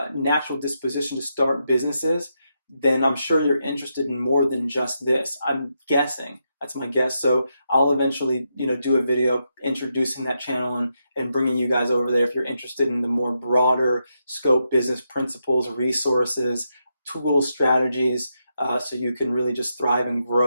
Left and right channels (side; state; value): both; inverted; correlation -0.83